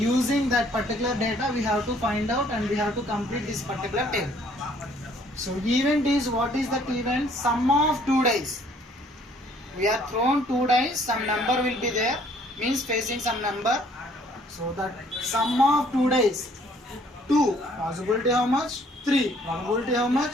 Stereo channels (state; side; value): normal; both; correlation 0.61